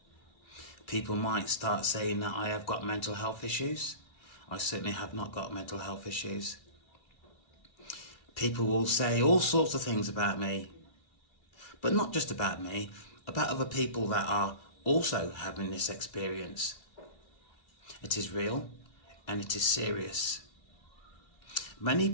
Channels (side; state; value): right; late; 2.5 ms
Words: People might start saying that I have got mental health issues. I certainly have not got mental health issues. People will say all sorts of things about me, but not just about me, about other people that are also having this experience. It is real and it is serious. Many